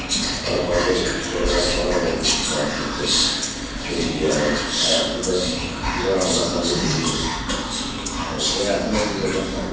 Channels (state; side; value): identical; both; correlation 1.00